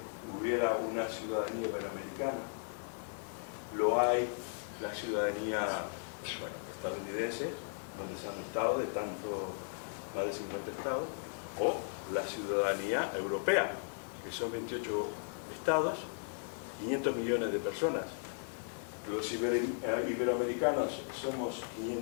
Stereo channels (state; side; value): silent; right; digital silence